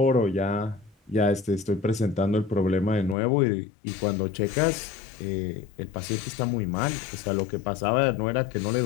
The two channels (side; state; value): right; drops out; at 3.2 s